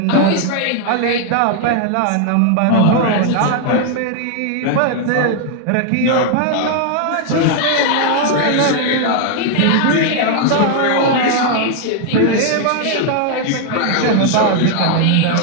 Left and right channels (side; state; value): both; different; correlation 0.00